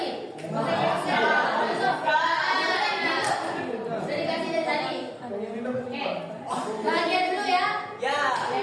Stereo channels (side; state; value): both; identical; correlation 1.00